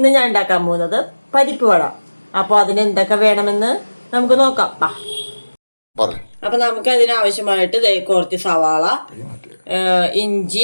ഞാൻ ഉണ്ടാക്കാൻ പോകുന്നത് പരിപ്പ് വട. അപ്പോൾ അതിന് എന്തൊക്കെ വേണമെന്ന് നമുക്ക് നോക്കാം. അപ്പൊ നമുക്ക് അതിനാവശ്യമായിട്ട് കുറച്ച് സവാള,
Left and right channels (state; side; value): inverted; both; correlation -1.00